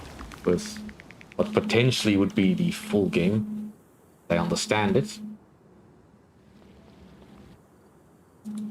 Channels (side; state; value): both; identical; correlation 1.00